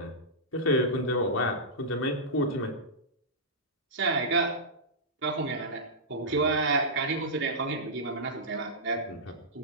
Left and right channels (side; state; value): both; normal; correlation -0.14